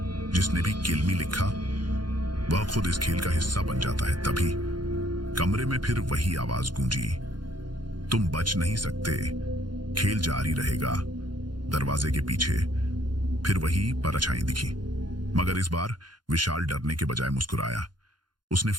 जिसने भी किल मी लिखा वह खुद इस खेल का हिस्सा बन जाता है। तभी कमरे में फिर वही आवाज गूंजी, तुम बच नहीं सकते, खेल जारी रहेगा। दरवाजे के पीछे फिर वही परछाई दिखी, मगर इस बार विशाल डरने के बजाय मुस्कुराया। उसने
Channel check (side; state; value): left; late; 0.71 ms